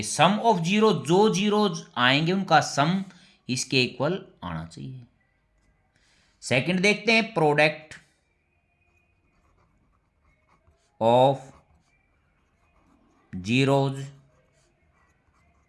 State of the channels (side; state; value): both; identical; correlation 1.00